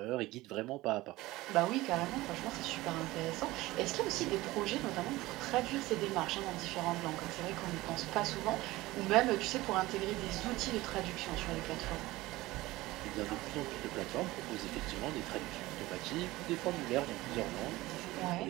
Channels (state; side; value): quieter; left; 18.8 dB